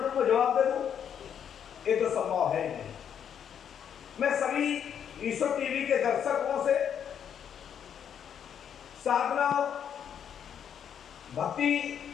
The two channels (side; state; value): right; quieter; 8.5 dB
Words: में जवाब दे दूं, ये तो संभव है नहीं। मैं सभी ईश्वर टीवी के दर्शकों से साधना भक्ति,